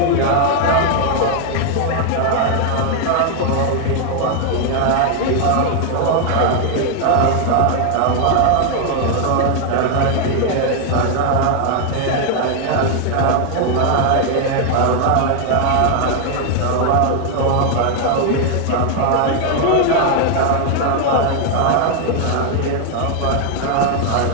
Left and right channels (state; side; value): different; both; correlation 0.00